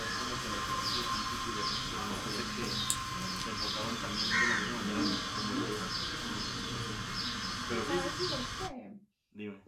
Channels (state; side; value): identical; both; correlation 1.00